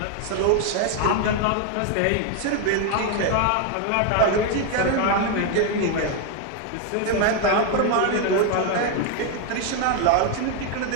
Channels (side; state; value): both; different; correlation 0.01